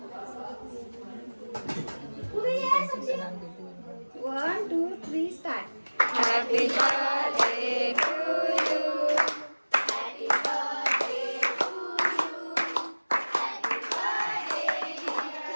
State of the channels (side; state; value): both; inverted; correlation -1.00